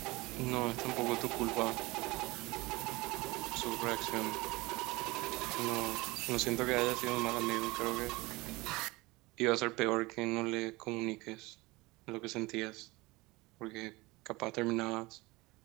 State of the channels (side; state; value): left; quieter; 22.3 dB